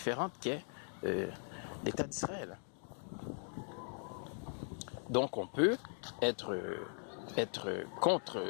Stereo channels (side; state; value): right; silent; 51 dB below the other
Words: qu'est l'État d'Israël. Donc on peut être contre